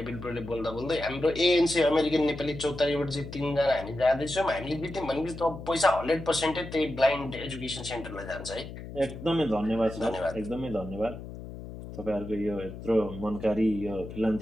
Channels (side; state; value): left; noise; hum, 11 dB below the sound